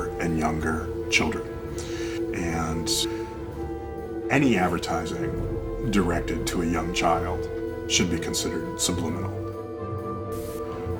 and younger children. And any advertising directed to a young child should be considered subliminal,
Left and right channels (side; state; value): both; identical; correlation 1.00